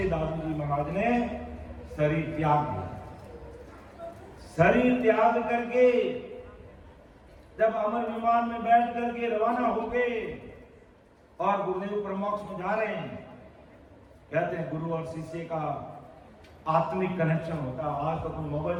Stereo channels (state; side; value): identical; both; correlation 1.00